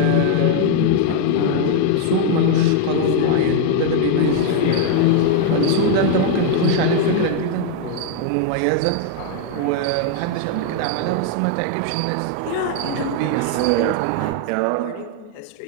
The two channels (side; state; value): both; different; correlation 0.00